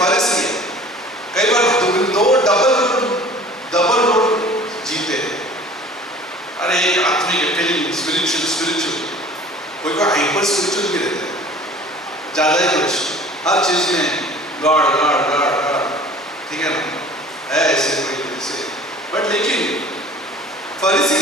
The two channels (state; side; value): normal; both; correlation 0.46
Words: कई बार दो डबल रोड जीते हैं। अरे एक आत्मिक फीलिंग स्पिरिचुअल, कोई हाइपर स्पिरिचुअल भी रहते हैं, ज्यादा ही कुछ हर चीज में गॉड, ठीक है ना, है ऐसे कोई जैसे। बट लेकिन फरीसी